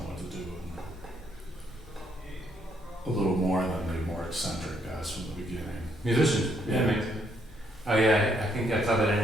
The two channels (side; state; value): both; normal; correlation 0.72